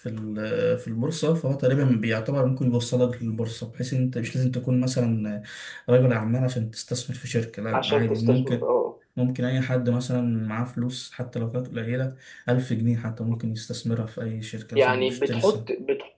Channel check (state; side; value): identical; both; correlation 1.00